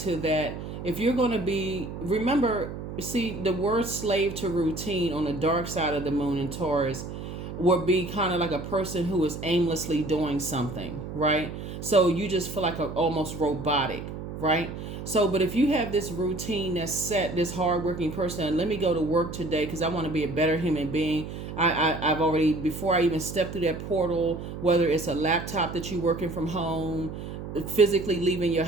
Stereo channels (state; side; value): noise; right; hum, 8 dB below the sound